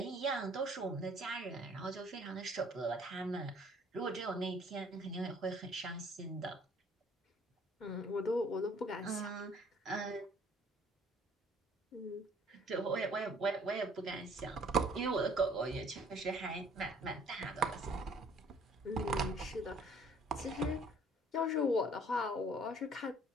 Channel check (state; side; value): normal; both; correlation 0.57